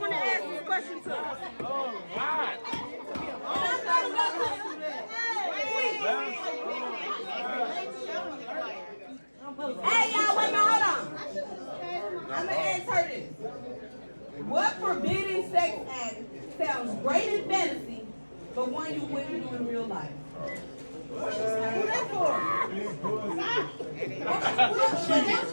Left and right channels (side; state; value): both; inverted; correlation -1.00